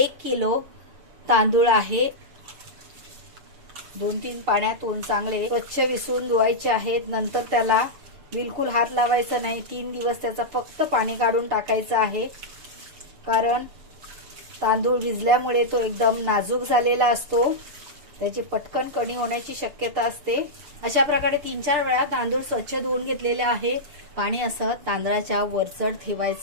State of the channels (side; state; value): left; late; 7.1 ms